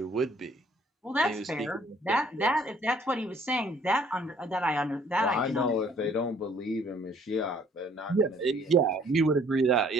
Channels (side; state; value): both; normal; correlation 0.60